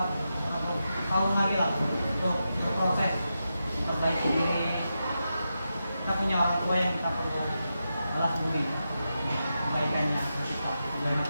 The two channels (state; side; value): inverted; both; correlation -0.88